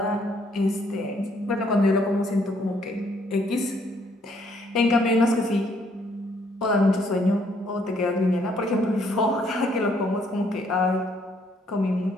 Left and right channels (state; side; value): normal; both; correlation 0.68